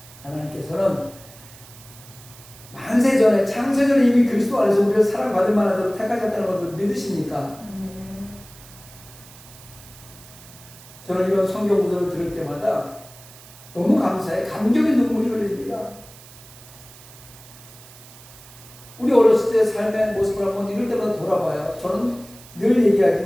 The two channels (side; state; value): right; noise; hiss, 20 dB below the sound